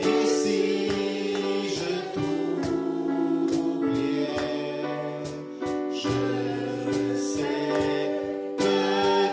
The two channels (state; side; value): identical; both; correlation 1.00